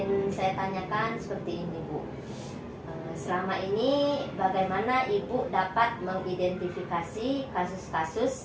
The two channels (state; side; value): identical; both; correlation 1.00